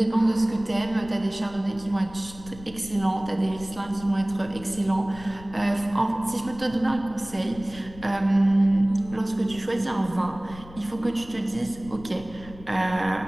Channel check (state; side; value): noise; left; rumble, 18 dB below the sound